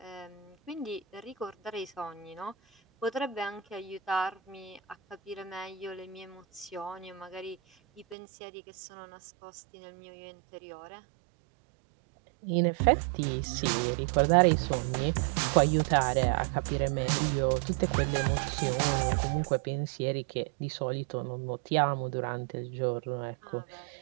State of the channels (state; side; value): drops out; left; at 8.2 s